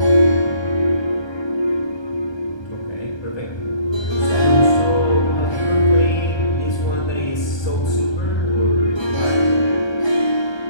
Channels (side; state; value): right; late; 1.2 ms